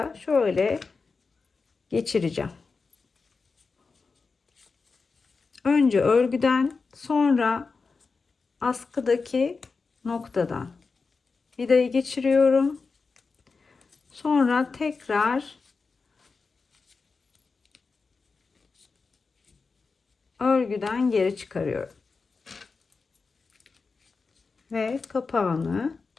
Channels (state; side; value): quieter; right; 4.5 dB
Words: şöyle geçireceğim. Önce örgüden, sonra askıdaki noktadan vidayı geçiriyorum. Sonra tekrar örgüden geri çıkarıyorum. Ve kapağını